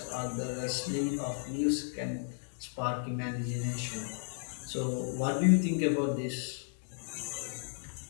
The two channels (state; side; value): silent; right; digital silence